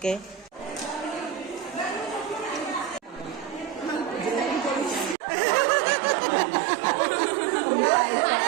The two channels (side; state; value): left; drops out; at 5.2 s